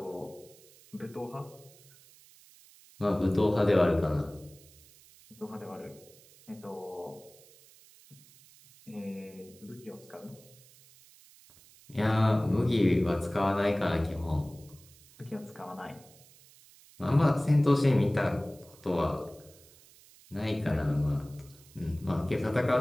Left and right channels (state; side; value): noise; right; hiss, 25 dB below the sound